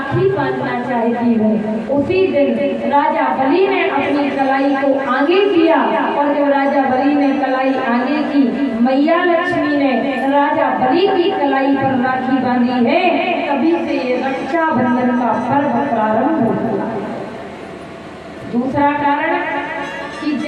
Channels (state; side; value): identical; both; correlation 1.00